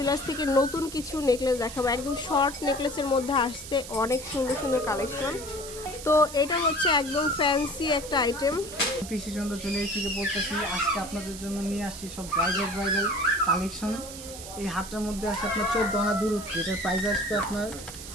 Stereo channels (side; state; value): right; noise; hiss, 12 dB below the sound